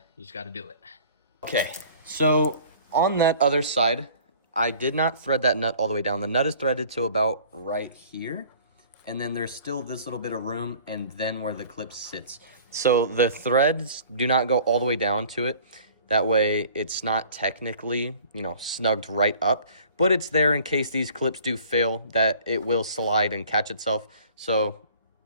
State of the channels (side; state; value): both; inverted; correlation -0.49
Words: do it. Okay, so on that other side, I did not thread that nut all the way down. The nut is threaded to about right here. And then there's still this little bit of room and then where the clip sits. So the threads do not go all the way down to it. That way it's not technically, you know, snugged right up, but it's there in case these clips do fail, that it will slide and catch itself. So,